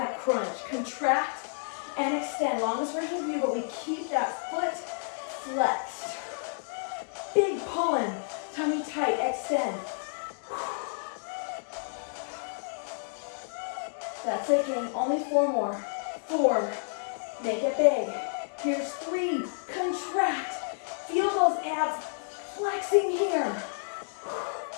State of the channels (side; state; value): right; silent; digital silence